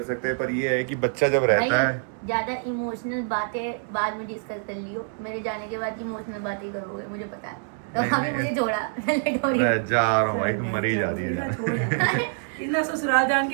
सकते। पर ये है कि बच्चा जब रहता है, ज्यादा इमोशनल बातें बाद में डिस्कस कर लियो। मेरे जाने के बाद इमोशनल बातें करोगे, मुझे पता है। तो अभी मुझे छोड़ा, लेट हो रही है। मैं जा रहा हूँ भाई, तुम मरी जा रही है। इतना ससुराल जान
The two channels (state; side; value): silent; left; 61 dB below the other